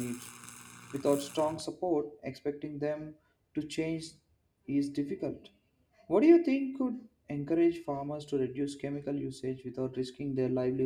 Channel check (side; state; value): both; identical; correlation 1.00